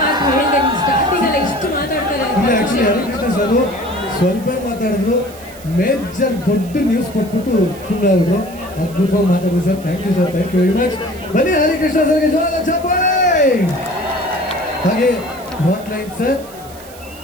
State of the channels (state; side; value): noise; right; hiss, 20 dB below the sound